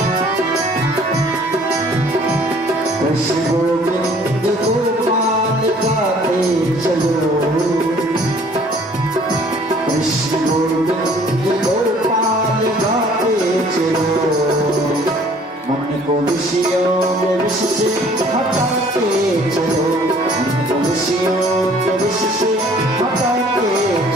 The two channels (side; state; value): both; normal; correlation 0.55